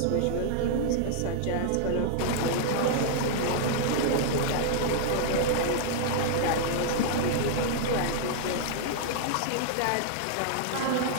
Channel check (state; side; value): different; both; correlation -0.01